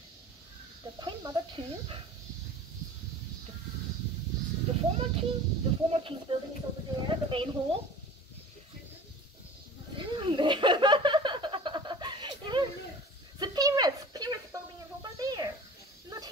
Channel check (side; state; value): both; normal; correlation 0.41